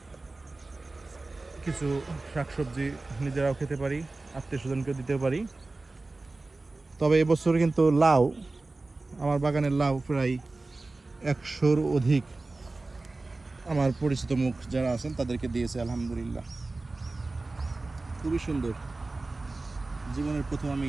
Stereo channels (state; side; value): quieter; left; 3.3 dB